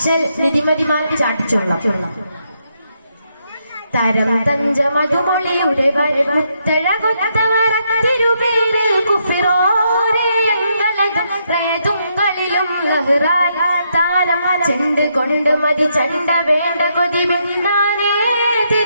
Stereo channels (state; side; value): inverted; both; correlation -0.77